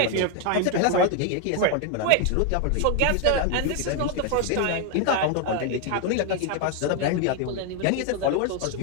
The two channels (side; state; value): both; different; correlation 0.01